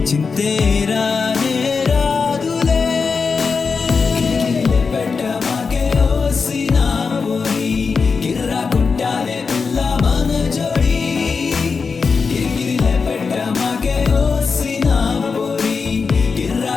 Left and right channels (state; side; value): quieter; right; 5.1 dB